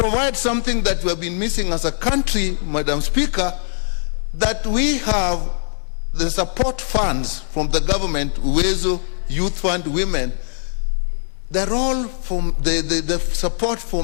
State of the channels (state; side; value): silent; right; 63 dB below the other